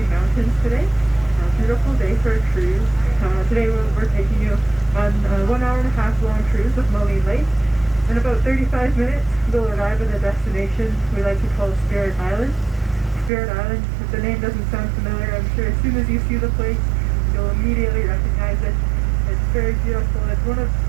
mountains today. Beautiful day for a cruise. Today we're taking you on a 1 hour and a half long cruise of Marline Lake. In about 35 minutes, we'll arrive at a destination we like to call Spirit Island. Spirit Island, if the name doesn't sound familiar, I'm sure as soon as you see the place, you'll immediately recognize it. It's very beautiful. It's one of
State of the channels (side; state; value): left; drops out; at 13.3 s